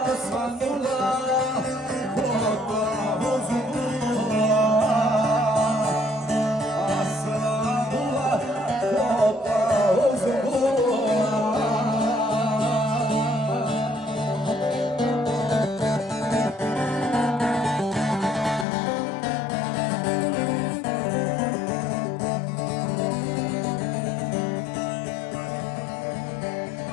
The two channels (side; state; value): right; drops out; at 18.7 s